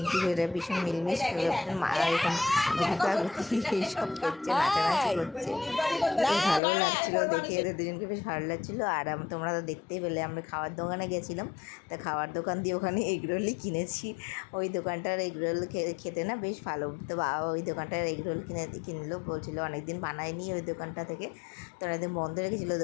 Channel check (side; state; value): right; drops out; at 6.6 s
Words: এরা ভীষণ মিলমিশ এরকম গুতাগুতি এইসব করছে, নাচানাচি করছে, বেশ ভালো লাগছিলো দেখে, এদের দুজনকে বেশ ভালো লাগছিলো। আর তোমরা তো দেখতেই পেলে আমরা খাওয়ার দোকানে গেছিলাম, তা খাওয়ার দোকান দিয়ে ওখানে এগরোলই কিনেছি। ওই দোকানটার এগরোল খেতে না বেশ ভালো, তো বাবা ওই দোকানটার এগরোল কিনলো, বলছিলো অনেকদিন বানায়নি ওই দোকানটা থেকে, তো অনেকদিন বন্ধ রেখেছিলো